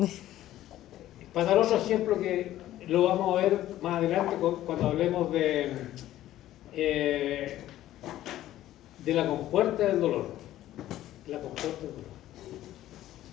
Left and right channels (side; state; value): right; quieter; 13.8 dB